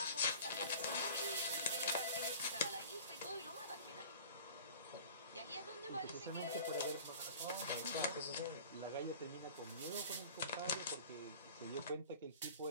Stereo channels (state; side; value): inverted; both; correlation -0.43